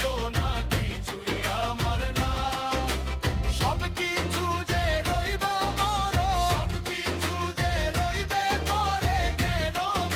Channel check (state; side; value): identical; both; correlation 1.00